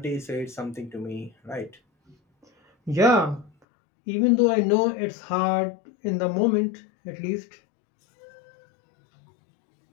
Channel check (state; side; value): drops out; right; at 3.5 s